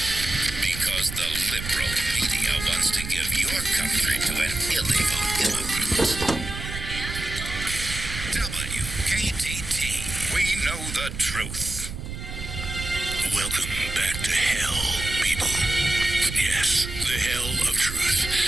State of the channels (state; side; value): noise; right; rumble, 8 dB below the sound